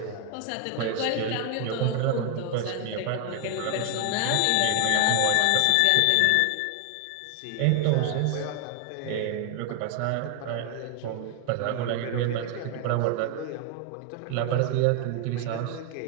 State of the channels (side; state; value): both; different; correlation 0.00